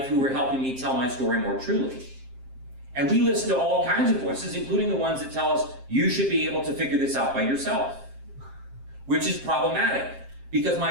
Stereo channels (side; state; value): left; late; 7.5 ms